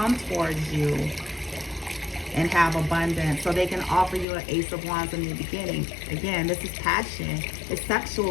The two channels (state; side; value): drops out; right; at 4.2 s